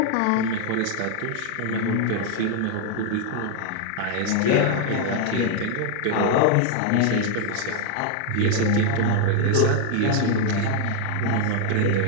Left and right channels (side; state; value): both; different; correlation 0.00